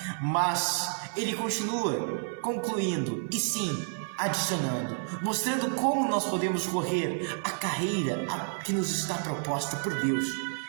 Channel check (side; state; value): left; silent; 58 dB below the other